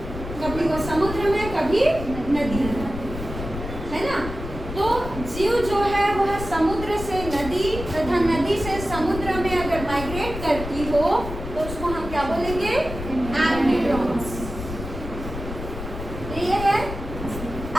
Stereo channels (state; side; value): noise; left; rumble, 8 dB below the sound